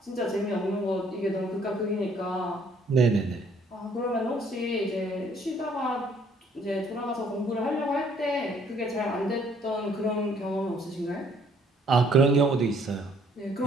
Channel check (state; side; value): normal; both; correlation 0.62